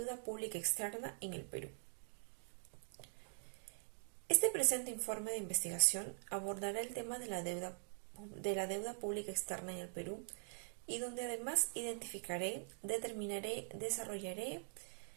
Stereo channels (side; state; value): left; silent; digital silence